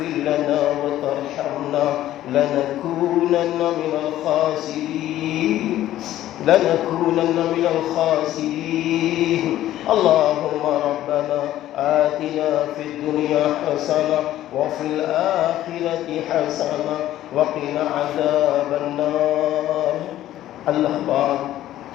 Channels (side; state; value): right; quieter; 13.4 dB